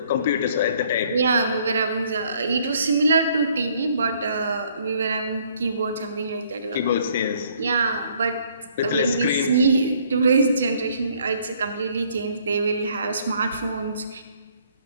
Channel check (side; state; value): both; inverted; correlation -0.63